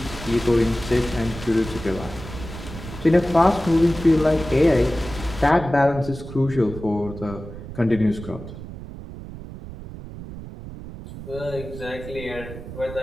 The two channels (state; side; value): noise; right; rumble, 12 dB below the sound